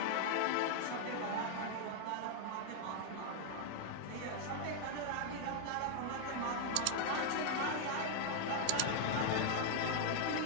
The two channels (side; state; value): both; different; correlation 0.00